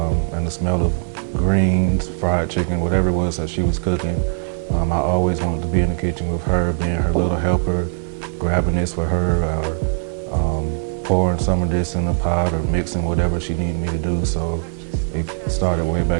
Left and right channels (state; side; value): silent; left; 55 dB below the other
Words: and the smell of greens, fried chicken, whatever it was that she was cooking. I always wanted to be in the kitchen with her, being her little helper, grabbing this for her, or pouring some of this in a pot, or mixing whatever she needed me to do. So it started way